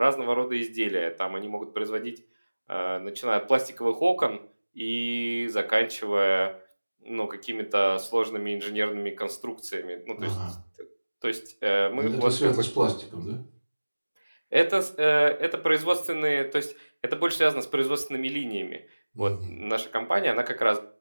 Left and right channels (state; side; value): inverted; both; correlation -1.00